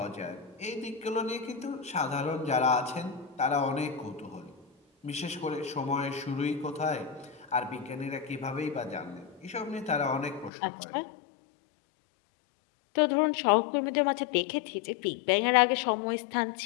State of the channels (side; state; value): right; drops out; at 10.5 s